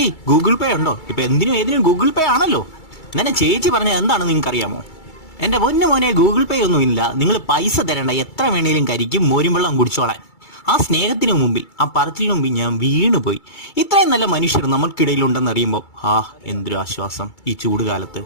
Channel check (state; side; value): late; right; 2.3 ms